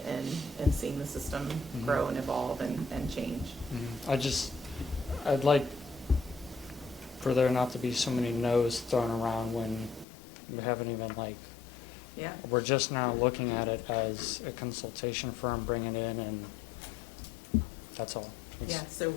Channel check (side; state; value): right; drops out; at 10.1 s